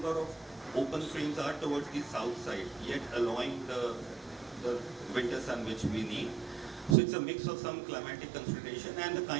of open frames are towards the south side, yet allowing the winter sun which we need. So it's a mix of some climatic consideration and the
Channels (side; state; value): left; drops out; at 7.0 s